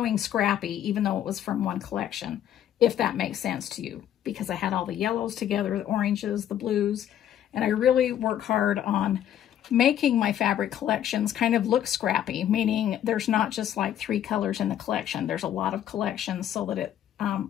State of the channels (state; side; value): quieter; right; 10.8 dB